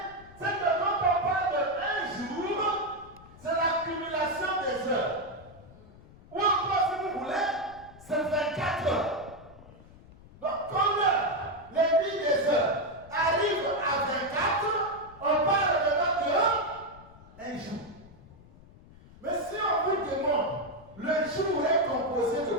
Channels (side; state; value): left; noise; rumble, 22 dB below the sound